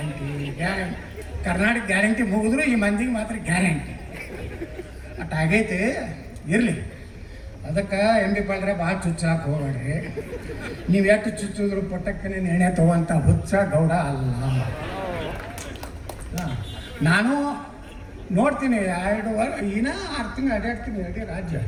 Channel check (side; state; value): both; identical; correlation 1.00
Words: guarantee, Karnataka guarantee ಮುಗಿದ್ರು ಈ ಮಂದಿಗೆ ಮಾತ್ರ ಗ್ಯಾರಂಟಿ ಅಟ್ ಆಗೈತೆ. ಇರಲಿ, ಅದಕ್ಕೆ MB ಪಾಲ್ರೆ ಭಾಳ ಚುಚ್ಚಾಕ ಹೋಗ್ಬೇಡ್ರಿ. ನೀವು ಎಷ್ಟು ಚುಚ್ಚಿದ್ರು ಪುಟ್ಟಕ್ಕನೆ ಎಣ್ಣೆ ತಗೋಂಥ ಹುಚ್ಚ ಗೌಡ ಅಲ್ಲ. ನಾನು ನೋಡ್ತೀನಿ 2 ವರ್ಷ ಇನ್ನೂ 6 ತಿಂಗಳು ಅಡ್ಡಾಡ್ತೀನಿ ಇಡೀ ರಾಜ್ಯ.